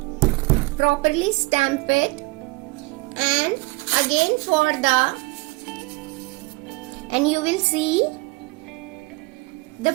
Properly stamp it, and again for the, and you will see the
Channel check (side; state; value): left; quieter; 23.3 dB